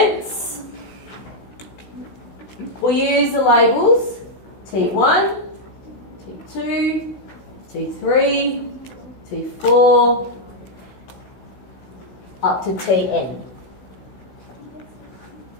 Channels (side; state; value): right; late; 16 ms